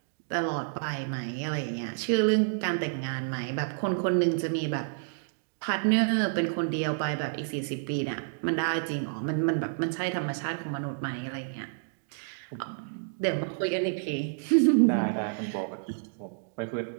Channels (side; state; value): left; silent; digital silence